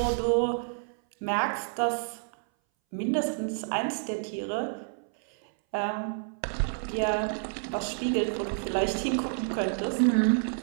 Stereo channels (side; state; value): left; silent; 58 dB below the other